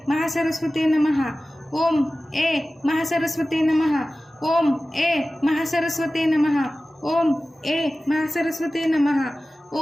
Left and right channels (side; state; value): both; normal; correlation 0.96